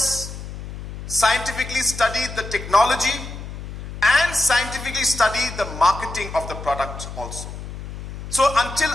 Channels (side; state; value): left; noise; hum, 10 dB below the sound